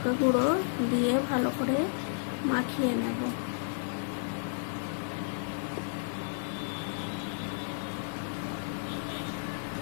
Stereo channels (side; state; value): right; silent; digital silence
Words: গুঁড়ো দিয়ে ভালো করে মাখিয়ে নেব।